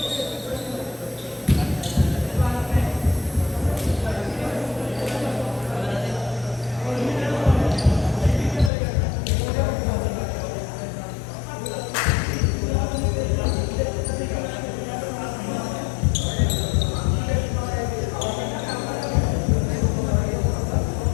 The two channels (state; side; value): drops out; right; at 8.7 s